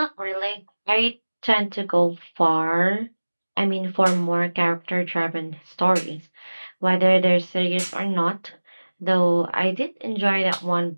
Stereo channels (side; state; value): both; inverted; correlation -1.00